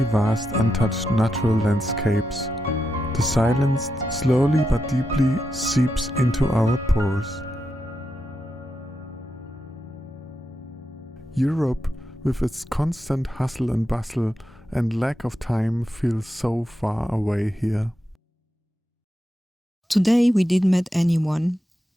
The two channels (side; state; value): both; normal; correlation 0.86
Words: vast untouched natural landscapes. The silence slowly but deeply seeps into our pores. Europe, with its constant hustle and bustle and lack of time, feels so far away here. Today we didn't meet anyone,